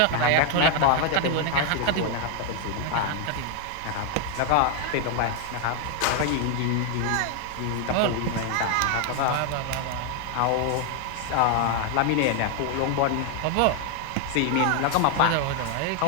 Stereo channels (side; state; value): both; different; correlation 0.01